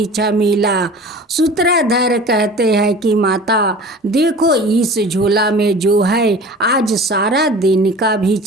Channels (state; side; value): normal; both; correlation 0.40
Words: मिला। सूत्रधर कहते हैं कि माता देखो, इस झोला में जो है आज सारा दिन का